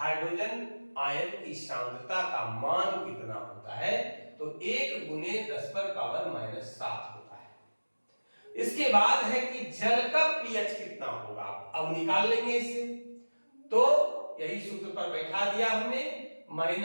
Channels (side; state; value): both; inverted; correlation -1.00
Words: आयन की सांद्रता का मान कितना होता है, तो 1 गुने 10 पर पावर माइनस 7 होता है। इसके बाद है कि जल का पीएच कितना होगा, अब निकाल लेंगे इसे। तो यही सूत्र पर बैठा दिया हमने,